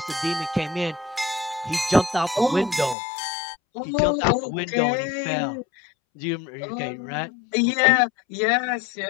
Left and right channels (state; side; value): drops out; right; at 3.0 s